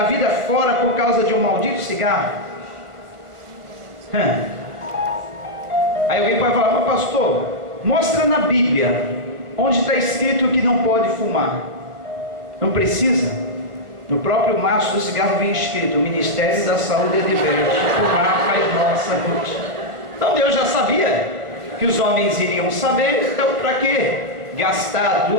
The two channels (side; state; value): left; late; 1.4 ms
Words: vida fora por causa de um maldito cigarro. Aí alguém pode falar: mas pastor, mostra na Bíblia onde está escrito que não pode fumar. Não precisa. No próprio maço do cigarro vem escrito: o Ministério da Saúde é diverso, fumar faz mal à saúde. Então Deus já sabia que os homens iriam saber. Então para que gastar